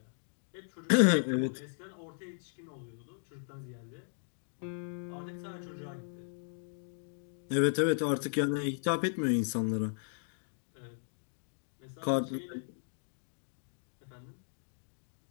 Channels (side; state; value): right; silent; digital silence